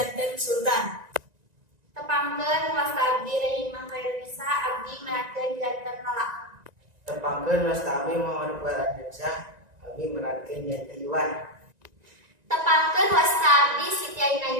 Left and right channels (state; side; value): late; left; 1.9 ms